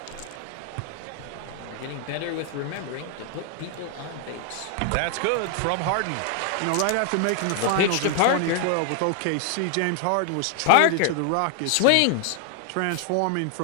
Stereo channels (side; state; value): both; different; correlation 0.00